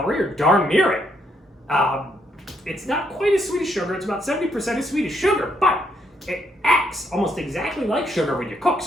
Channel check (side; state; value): both; normal; correlation 0.74